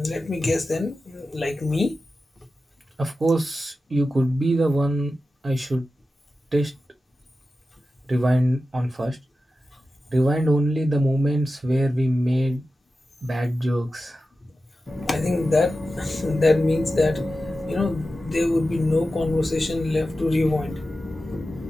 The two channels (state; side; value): normal; both; correlation 0.93